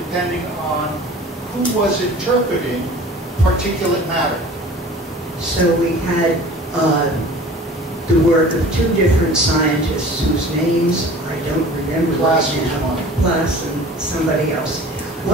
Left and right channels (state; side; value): normal; both; correlation 0.43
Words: on who was interpreting particulate matter. So we had the work of two different scientists whose names I don't remember Glass right was now. one. Glass and somebody else.